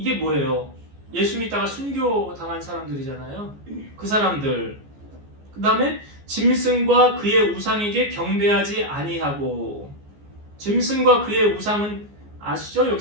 뭐예요? 예수 믿다가 순교 당한 사람들이잖아요. 그 사람들. 그 다음에 짐승과 그의 우상에게 경배하지 아니하고. 짐승과 그의 우상은 아시죠?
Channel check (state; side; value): late; left; 14 ms